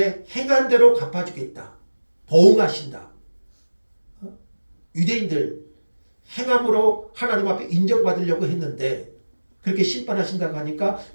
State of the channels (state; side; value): inverted; both; correlation -1.00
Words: 행한 대로 갚아주겠다. 보응하신다. 유대인들 행함으로 하나님 앞에 인정받으려고 했는데 그렇게 심판하신다고 하니까